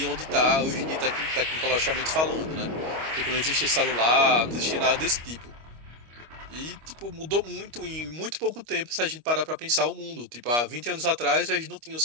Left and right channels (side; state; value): left; late; 25 ms